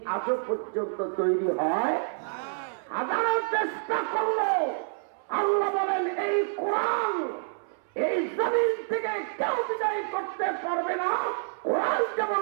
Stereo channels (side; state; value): left; silent; 59 dB below the other